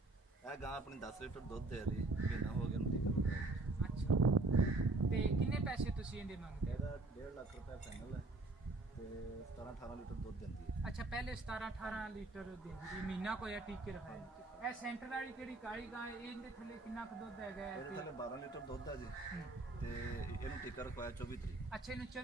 ਇਹ ਗਾਂ ਆਪਣੀ 10 ਲੀਟਰ ਦੁੱਧ ਦੇ ਰਹੀ, ਮਹੀਨਾ ਹੋ ਗਿਆ ਨੂੰ ਟੀਕਾ। ਅੱਛਾ, ਤੇ ਕਿੰਨੇ ਪੈਸੇ ਤੁਸੀਂ ਇਹਦੇ ਮੰਗਦੇ? ਇਹਦਾ 1.5 ਲੱਖ ਰੁਪਏ ਫਾਈਨਲ ਹੈ ਤੇ 17-18 ਲੀਟਰ ਦੁੱਧ ਦਿੰਦੀ ਹੈ। ਅੱਛਾ, ਪਹਿਲੇ 17-18 ਲੀਟਰ ਦਿੰਦੀ ਸੀ, ਮਹੀਨਾ ਕੋਈ ਟੀਕੇ ਰਖਾਇਆ। ਇਹ ਸੈਂਟਰ ਵਾਲੀ ਕਿਹੜੀ ਕਾਲੀ ਗਾਂ ਹੈ, ਇਹਦੇ ਥੱਲੇ ਕਿੰਨਾ ਕੁ ਦੁੱਧ ਹੈਗਾ? ਇਹਦੇ ਥੱਲੇ 12 ਲੀਟਰ ਦੁੱਧ ਹੈ ਜੀ ਤੇ ਇਹਨੂੰ ਟੀਕਾ ਰਖਵਾਇਆ 24 ਤਰੀਕ। ਅੱਛਾ, ਇਹਨੂੰ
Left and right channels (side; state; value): left; quieter; 3.1 dB